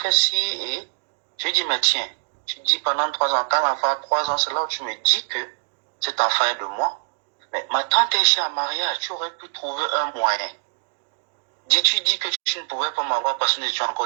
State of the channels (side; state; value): left; silent; digital silence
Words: ci, et je lui dis, mais tiens, tu dis pendant 3 ans, quand l'enfant a 3 ans, c'est là où tu me dis que cet enfant est de moi. Mais ma tante est ici à mariage, tu aurais pu trouver un moyen. Tu dis que tu ne pouvais pas m'avoir parce que nous étions